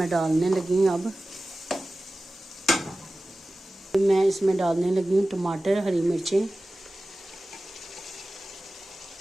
डालने लगी हूँ। अब मैं इसमें डालने लगी हूँ टमाटर, हरी मिर्चें,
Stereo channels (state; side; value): normal; both; correlation 0.96